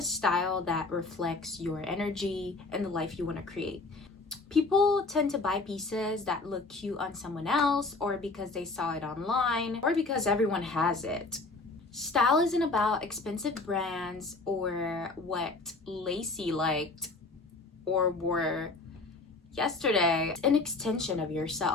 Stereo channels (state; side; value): quieter; right; 3.5 dB